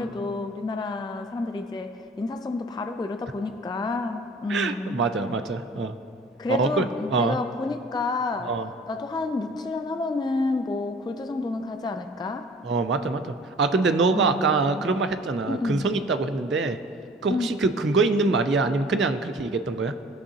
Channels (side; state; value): both; normal; correlation 0.48